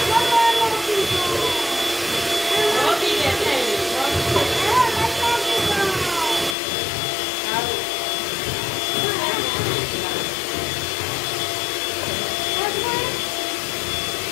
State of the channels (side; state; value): right; drops out; at 6.6 s